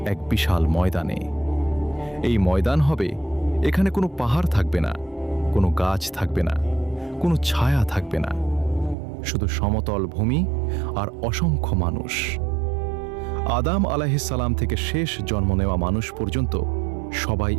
এক বিশাল ময়দানে। এই ময়দান হবে, এখানে কোনো পাহাড় থাকবে না, কোনো গাছ থাকবে না, কোনো ছায়া থাকবে না, শুধু সমতল ভূমি আর অসংখ্য মানুষ। আদম আলাইহিস সালাম থেকে শেষ জন্ম নেওয়া মানুষ পর্যন্ত সবাই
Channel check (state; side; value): drops out; left; at 9.0 s